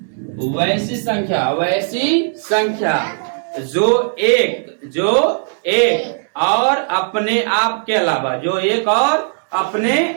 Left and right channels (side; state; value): left; silent; digital silence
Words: वैसी संख्या, वैसी संख्या जो एक और अपने आप के अलावा, जो एक और अपने